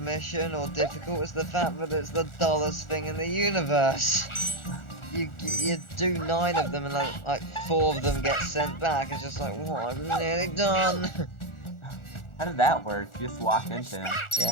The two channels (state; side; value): late; right; 1.4 ms